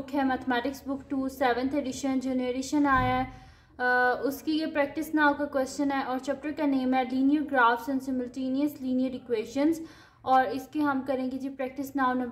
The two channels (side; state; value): both; identical; correlation 1.00